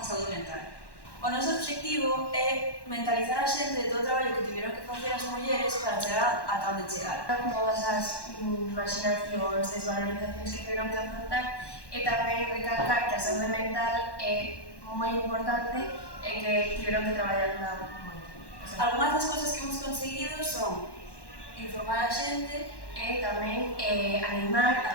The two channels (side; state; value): right; late; 1.1 ms